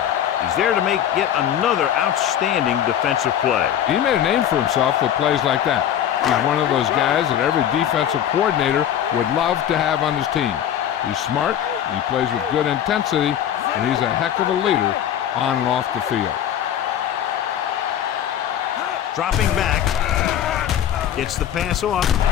He's there to make yet another outstanding defensive play. He made a name for himself with plays like that. He's one of those guys that every defensive coordinator would love to have on his team. He's smart, he plays with good intensity, and he's a heck of a leader on and off the field. Dropping back, gets the pass off,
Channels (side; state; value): right; quieter; 10.2 dB